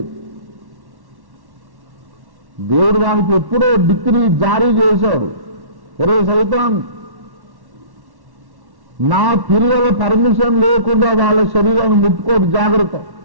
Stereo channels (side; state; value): left; late; 1.1 ms